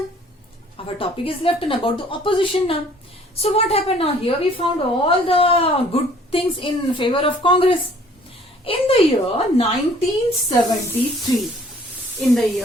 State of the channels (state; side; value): normal; both; correlation 0.56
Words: Our topic is left about the opposition now. So what happened now? Here we found all the good things in favor of Congress. In the year 1973, in the